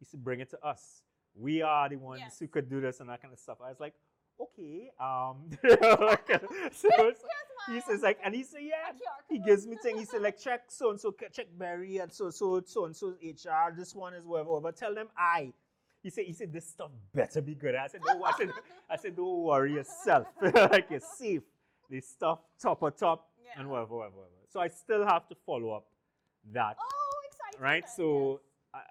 say bring it to us. We are the ones who could do this and that kind of stuff. I was like, okay. So he says like, and he said, yeah. He gives me thing. He said like, check so and so, check Barry and so and so HR. This one is whatever. Tell them I. He said this stuff better be good. I said, no. I said, don't worry yourself. Like you're safe. This stuff top and whatever. So I still have to follow up that. Oh, exciting. Right. So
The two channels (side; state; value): both; identical; correlation 1.00